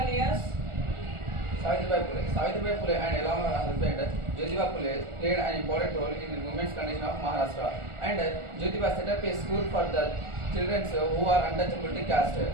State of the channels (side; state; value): left; late; 1.4 ms